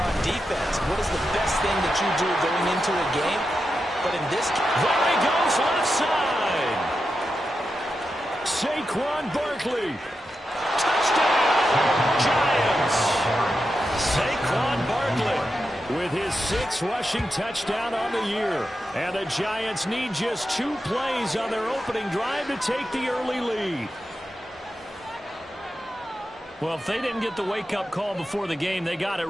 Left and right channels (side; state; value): both; normal; correlation 0.89